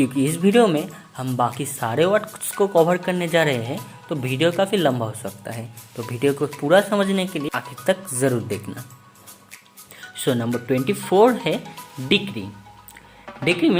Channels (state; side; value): identical; both; correlation 1.00